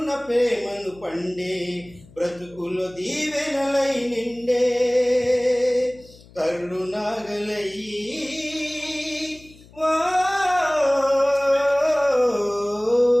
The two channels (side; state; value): left; noise; hum, 24 dB below the sound